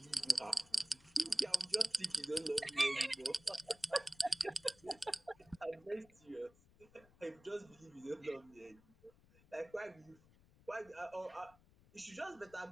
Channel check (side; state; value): left; noise; rumble, 27 dB below the sound